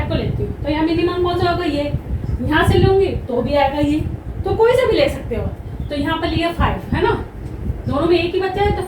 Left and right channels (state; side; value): identical; both; correlation 1.00